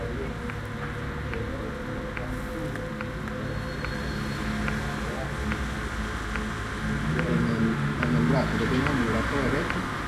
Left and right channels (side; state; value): both; identical; correlation 1.00